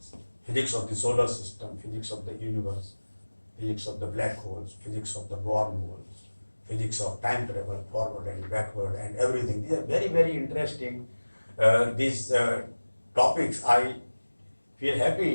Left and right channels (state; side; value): inverted; both; correlation -1.00